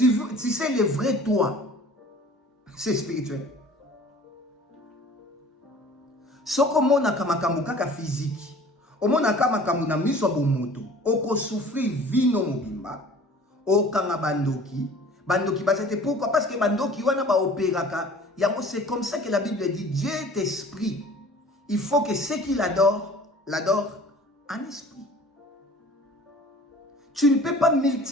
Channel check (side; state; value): both; normal; correlation 0.47